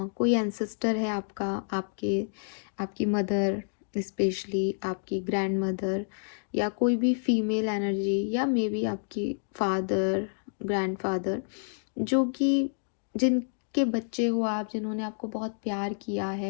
एंसेस्टर है आपका, आपकी मदर, स्पेशली आपकी ग्रैंड मदर, या कोई भी फीमेल एनर्जी, या मे बी आपकी फादर, ग्रैंडफादर, जो कि जिनके बच्चे हो आप, जिन्होंने आपको बहुत प्यार किया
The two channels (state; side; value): silent; right; digital silence